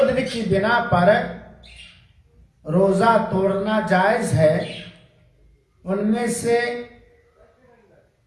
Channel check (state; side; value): identical; both; correlation 1.00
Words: کی بنا پر روزہ توڑنا جائز ہے، ان میں سے